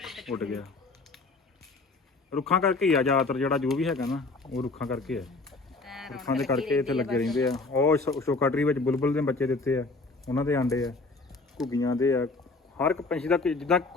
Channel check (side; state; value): right; quieter; 3.6 dB